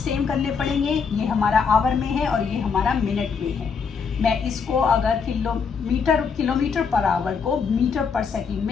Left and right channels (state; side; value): quieter; right; 5.8 dB